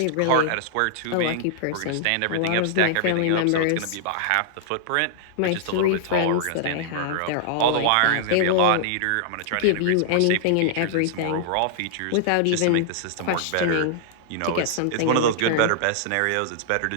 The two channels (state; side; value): different; both; correlation -0.01